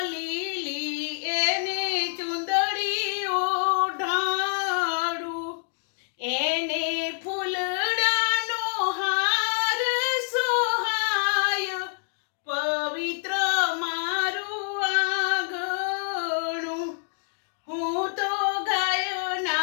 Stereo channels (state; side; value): silent; right; digital silence